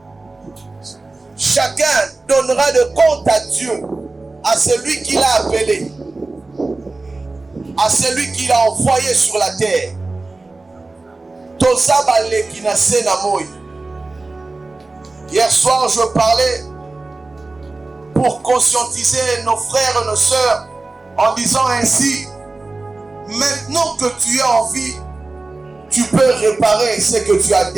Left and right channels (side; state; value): left; quieter; 3.3 dB